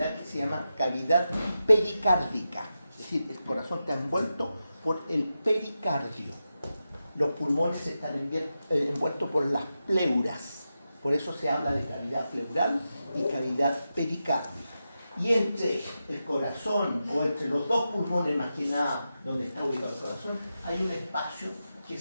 que se llama cavidad pericárdica. Es decir, el corazón está envuelto por el pericardio. Los pulmones están envueltos por las pleuras. Por eso se habla de cavidad pleural y cavidad pericárdica. Y entre el corazón, o entre los dos pulmones más que nada, donde está ubicado el corazón, hay un espacio que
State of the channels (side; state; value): both; inverted; correlation -0.90